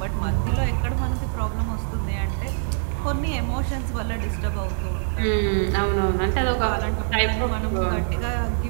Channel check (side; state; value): left; silent; 63 dB below the other